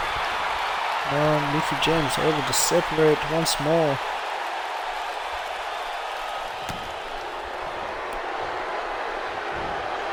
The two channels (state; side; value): identical; both; correlation 1.00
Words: Now Mickey James able to separate once more.